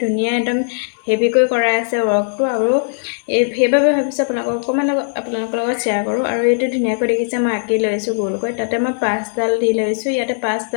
ধুনীয়া একদম হেভিকৈ কৰা আছে ৱৰ্কটো, আৰু সেইবাবে ভাবিছোঁ আপোনালোকৰ লগত শ্বেয়াৰ কৰোঁ। আৰু এইটো ধুনীয়াকৈ দেখিছে মই আঁকি লৈছোঁ গোলকৈ। তাতে মই 5ডাল দি লৈছোঁ। ইয়াতে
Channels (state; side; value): silent; right; digital silence